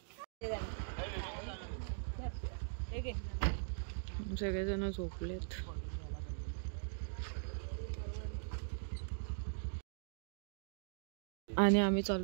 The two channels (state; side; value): silent; left; digital silence